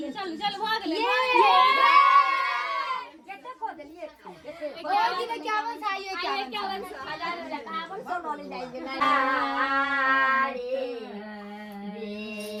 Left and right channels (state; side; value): identical; both; correlation 1.00